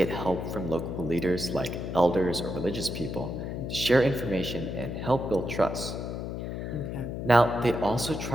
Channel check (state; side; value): noise; left; hum, 5 dB below the sound